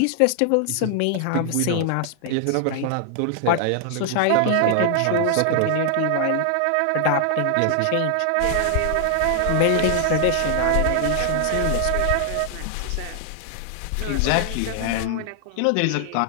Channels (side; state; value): both; different; correlation 0.00